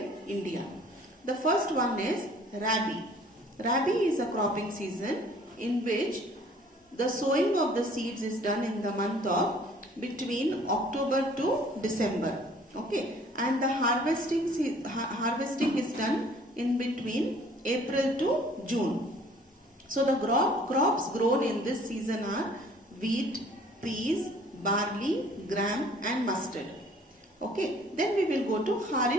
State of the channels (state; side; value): normal; both; correlation 0.55